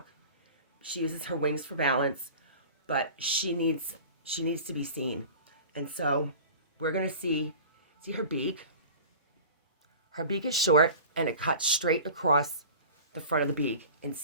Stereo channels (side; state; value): both; inverted; correlation -0.40